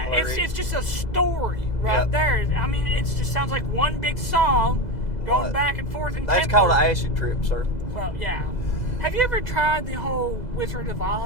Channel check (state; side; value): late; right; 2.0 ms